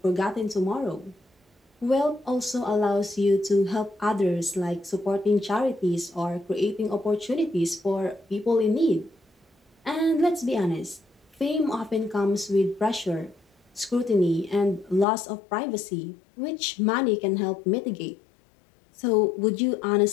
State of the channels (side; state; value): right; drops out; at 15.1 s